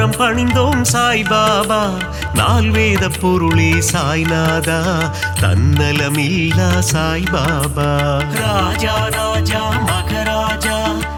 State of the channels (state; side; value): identical; both; correlation 1.00